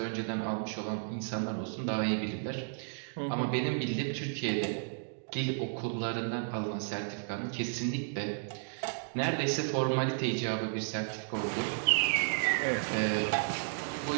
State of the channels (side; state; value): left; silent; digital silence